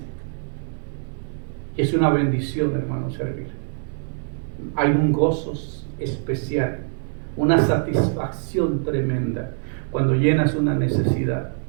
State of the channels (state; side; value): silent; left; digital silence